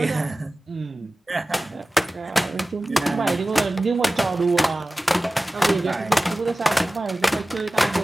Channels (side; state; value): both; normal; correlation 0.96